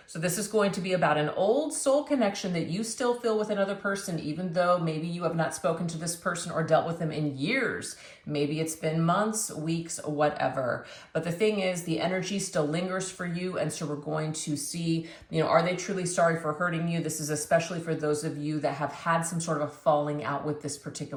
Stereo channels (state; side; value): identical; both; correlation 1.00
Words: So this is going to be about an old soul connection that you still feel with another person, even though maybe you have not spoken to this person or dealt with them in years. Maybe it's been months, weeks, whatever. But the thing is, the energy still lingers for you. And so we're going to see, are they truly sorry for hurting you? This is especially for those of you that have had some sort of a falling out with this